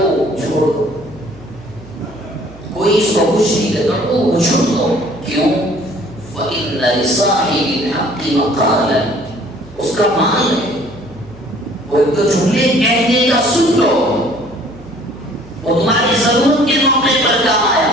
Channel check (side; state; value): right; noise; hum, 20 dB below the sound